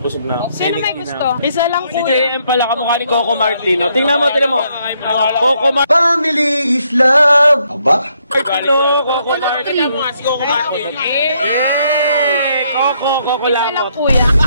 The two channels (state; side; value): inverted; both; correlation -0.73